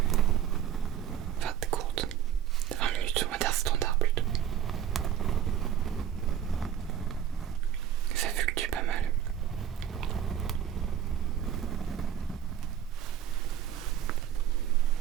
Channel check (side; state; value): left; quieter; 9.8 dB